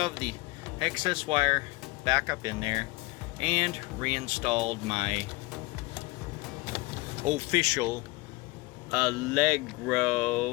the excess wire back up in there and reinstalled my official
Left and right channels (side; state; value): right; quieter; 22.9 dB